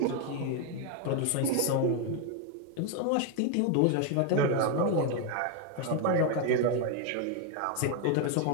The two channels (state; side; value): different; both; correlation 0.01